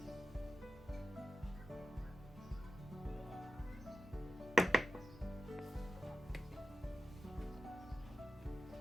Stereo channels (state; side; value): normal; both; correlation 0.93